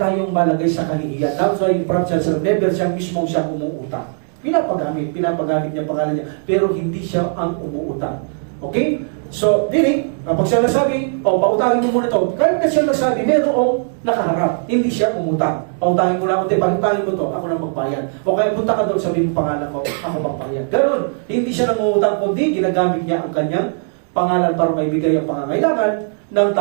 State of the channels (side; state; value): left; silent; 59 dB below the other